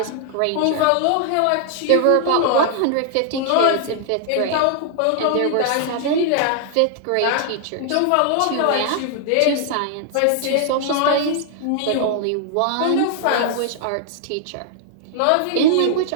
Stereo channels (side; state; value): both; different; correlation 0.00